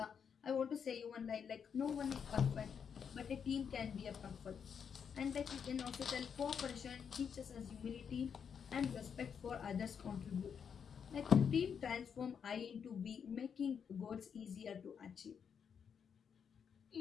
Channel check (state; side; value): quieter; right; 7.1 dB